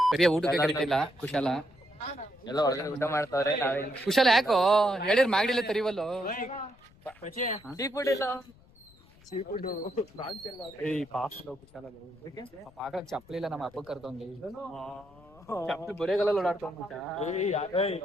ಬರೀ ಊಟಕ್ಕೆ ಕರಿತಿಲ್ಲ ಕುಶಾಲ. ಎಲ್ಲ ಒಳಗಡೆ ಊಟ ಮಾಡ್ತಾವ್ರೆ ನಾವೇ ಕುಶಾಲ ಯಾಕೋ ಹೇಳಿರ್ ಮಾಗಡಿಲ್ಲ ತರಿವಲ್ಲೋ. ಸೀ ಫುಡ್ ಇಲ್ಲ ಆಗ ಚಪ್ಪಲಿ ಇಲ್ಲ ನಮ್ಮ ಅಪ್ಪ ಕರ್ದವಂಗೆ ಚಪ್ಪಲಿ ಬರೆಗಲ್ಲ ಓಡಾಡ್ತವಂಗ.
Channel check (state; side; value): noise; left; rumble, 26 dB below the sound